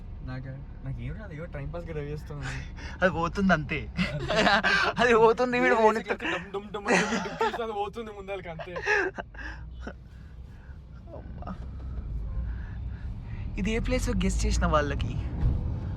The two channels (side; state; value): both; identical; correlation 1.00